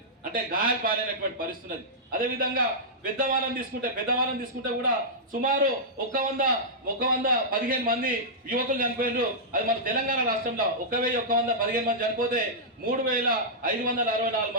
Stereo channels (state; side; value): normal; both; correlation -0.12